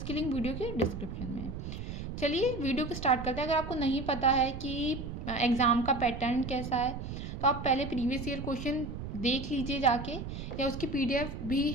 लिंक वीडियो के डिस्क्रिप्शन में है। चलिए वीडियो को स्टार्ट करते हैं। अगर आपको नहीं पता है कि एग्ज़ाम का पैटर्न कैसा है तो आप पहले प्रीवियस ईयर क्वेश्चन देख लीजिए जाके, या उसकी पीडीएफ भी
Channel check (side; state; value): right; noise; rumble, 7 dB below the sound